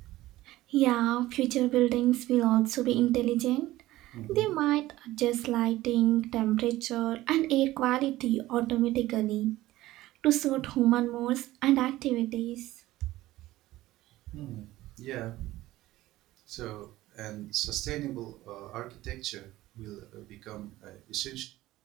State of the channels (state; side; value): quieter; left; 16.5 dB